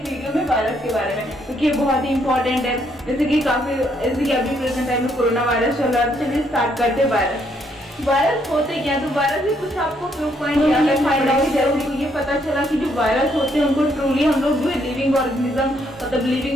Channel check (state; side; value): normal; both; correlation 0.72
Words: वीडियो में वायरस के बारे में, क्योंकि ये बहुत ही इंपॉर्टेंट है। जैसे कि अभी प्रेजेंट टाइम में कोरोना वायरस चल रहा है। चलिए स्टार्ट करते हैं। वायरस होते क्या, तो वायरस में कुछ आपको प्रूफ पॉइंट फाइंड आउट जरूर तो ये पता चला कि जो वायरस होते हैं उनको ट्रूली हम लोग जो है लिविंग ऑर्गेनिज्म मतलब